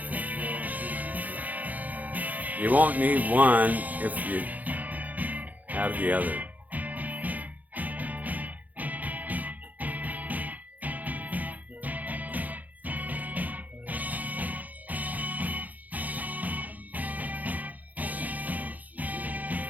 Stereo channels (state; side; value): late; left; 0.080 ms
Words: You won't need one if you have the other.